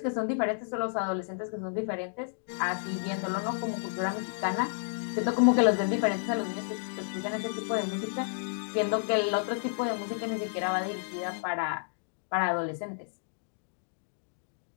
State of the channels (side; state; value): right; silent; digital silence